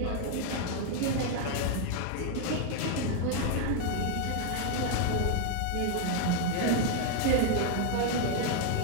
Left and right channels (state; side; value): different; both; correlation 0.00